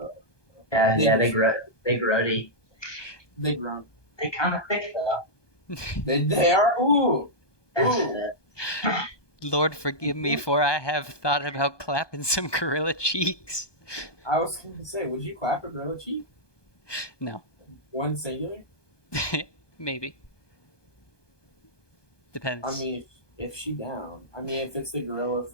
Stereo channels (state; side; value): late; right; 1.2 ms